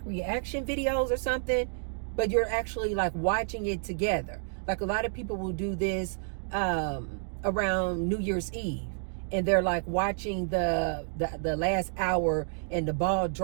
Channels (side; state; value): left; silent; digital silence